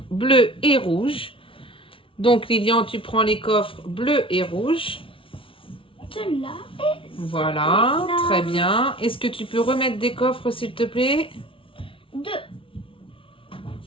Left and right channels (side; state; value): right; late; 0.25 ms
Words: bleu et rouge. Donc, Lilian, tu prends les coffres bleu et rouge. Celui-là. Voilà, Là. très bien. Est-ce que tu peux remettre des coffres, s'il te plaît? 2.